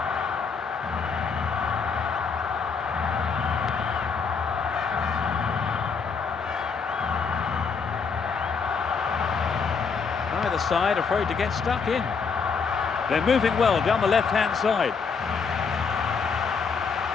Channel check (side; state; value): right; quieter; 5.5 dB